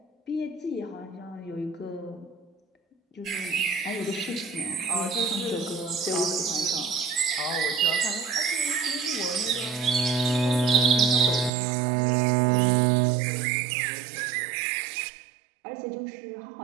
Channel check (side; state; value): left; drops out; at 11.5 s